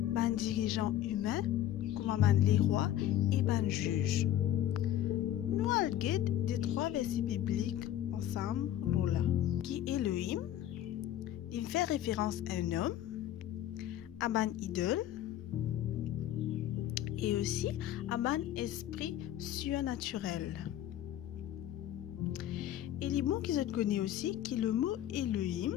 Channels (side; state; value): right; quieter; 12.1 dB